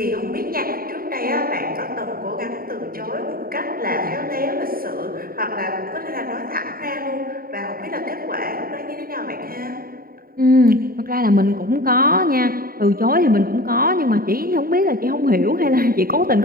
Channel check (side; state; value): left; late; 0.43 ms